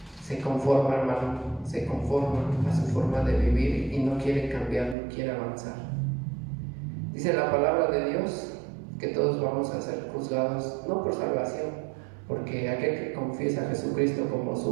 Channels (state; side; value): drops out; left; at 5.0 s